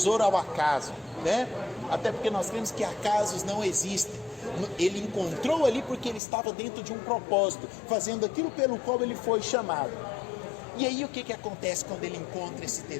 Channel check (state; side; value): drops out; right; at 6.2 s